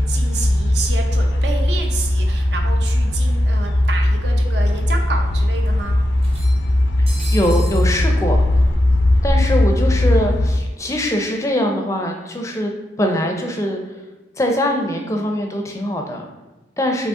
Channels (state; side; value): normal; both; correlation 0.86